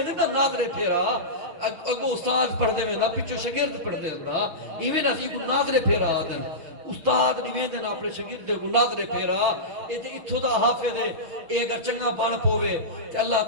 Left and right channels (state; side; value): late; left; 6.2 ms